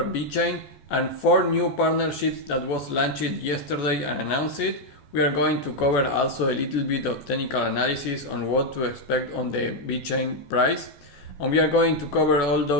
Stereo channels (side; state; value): right; late; 14 ms